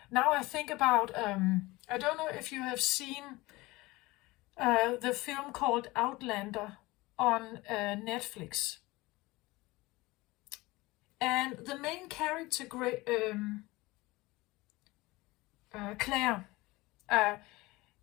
Now I think about I don't know if you have seen the film called Outlander on Netflix. And the main character, Claire,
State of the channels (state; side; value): quieter; right; 21.1 dB